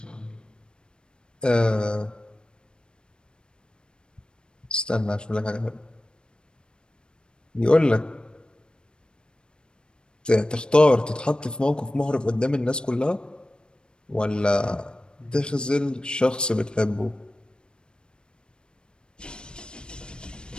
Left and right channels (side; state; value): right; late; 0.052 ms